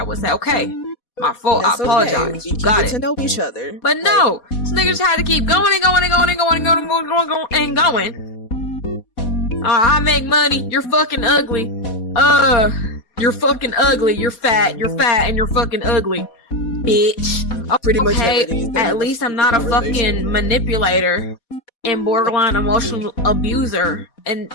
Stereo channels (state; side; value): late; right; 4.1 ms